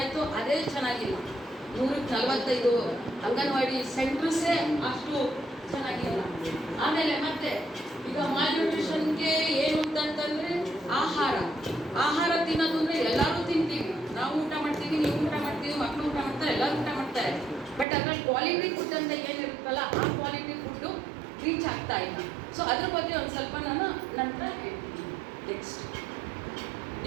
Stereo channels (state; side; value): drops out; left; at 17.9 s